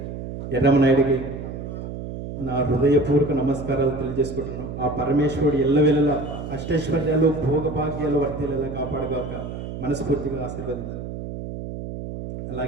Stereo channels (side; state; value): right; noise; hum, 8 dB below the sound